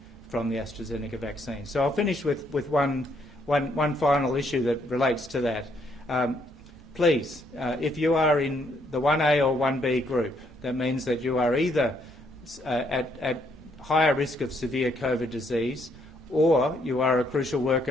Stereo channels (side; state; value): right; noise; hum, 26 dB below the sound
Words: from the AstraZeneca vaccine. So I'll finish with one final issue that relates to that. Please, if you are in the 1A or 1B group, that means that you are either at higher risk of severe COVID disease, or you are a crucial